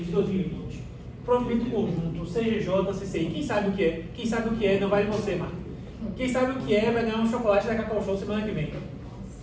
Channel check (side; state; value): both; identical; correlation 1.00